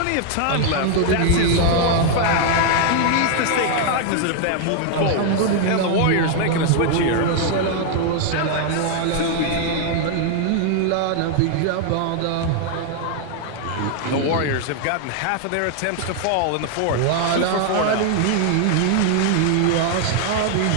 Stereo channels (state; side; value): different; both; correlation 0.00